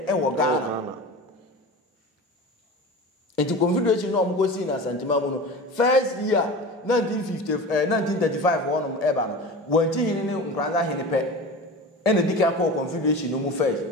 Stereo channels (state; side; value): normal; both; correlation 0.32